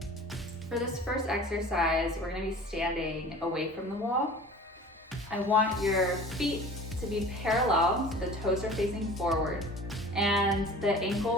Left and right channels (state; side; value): normal; both; correlation 0.42